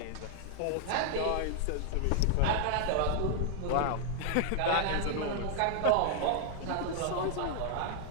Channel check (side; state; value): both; different; correlation 0.00